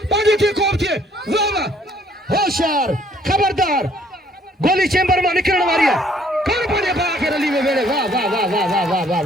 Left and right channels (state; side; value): normal; both; correlation 0.62